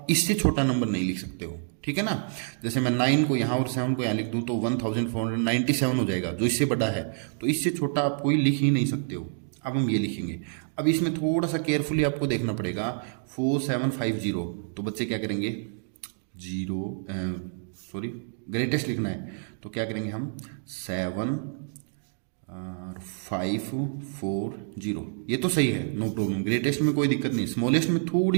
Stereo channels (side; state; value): left; silent; digital silence